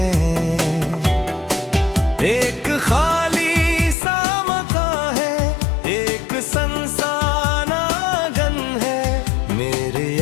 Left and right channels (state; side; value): drops out; right; at 4.0 s